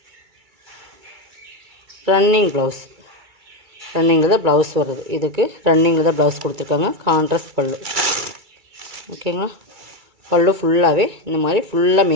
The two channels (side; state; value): left; late; 2.3 ms